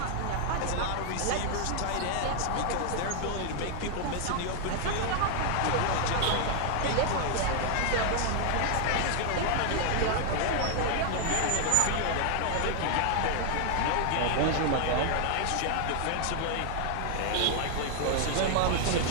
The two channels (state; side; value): different; both; correlation 0.00